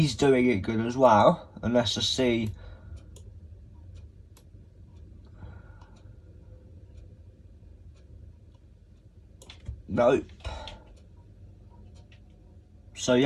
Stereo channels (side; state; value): both; identical; correlation 1.00